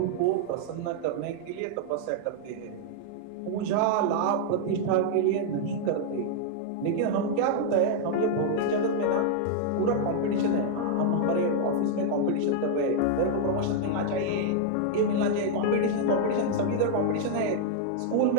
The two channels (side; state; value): both; different; correlation -0.01